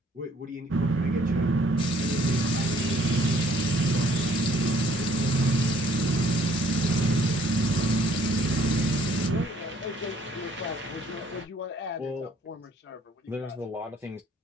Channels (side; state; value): both; normal; correlation 0.61